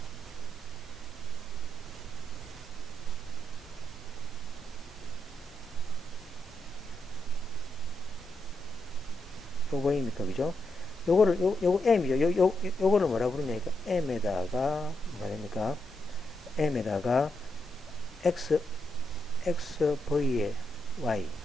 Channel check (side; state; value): both; normal; correlation 0.83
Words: 요거입니까, 그죠? 요거 m이죠. 요거를 뭐라 부르냐니까 m에다가 뭐가 됩니까? m에다가 xv의 y